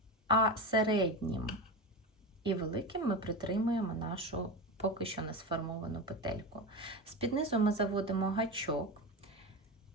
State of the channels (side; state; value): both; normal; correlation 0.22